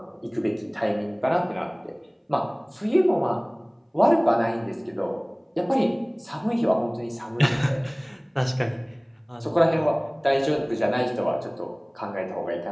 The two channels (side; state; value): both; identical; correlation 1.00